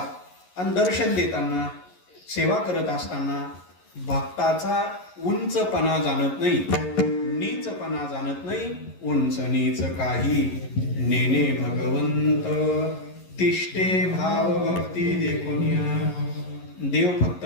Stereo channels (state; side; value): late; right; 11 ms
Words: आणि दर्शन देताना, सेवा करत असताना भक्ताचा उंचपणा जाणत नाही, नीचपणा जाणत नाही. उंच नीच काही नेने भगवंत, तिष्ठे भाव भक्ती देखुनिया. देव फक्त